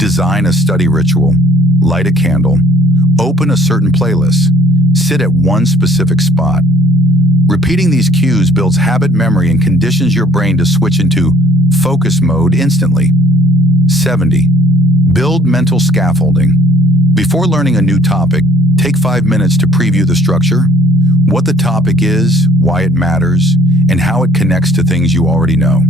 a study ritual. Light a candle. Open a certain playlist. Sit at one specific spot. Repeating these cues builds habit memory and conditions your brain to switch into focus mode instantly. 70. Build mental scaffolding. Before learning a new topic, take 5 minutes to preview the structure, what the topic is, why it matters, and how it connects to things you already know.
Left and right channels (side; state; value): both; normal; correlation 0.60